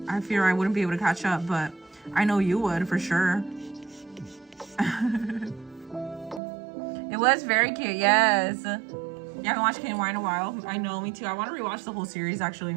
I fear I wouldn't be able to catch up, but I know you would, for sure. It was very cute, yes. Yeah, I haven't watched KNY in a while. I know, me too. I want to rewatch the whole series, actually.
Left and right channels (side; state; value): left; drops out; at 6.4 s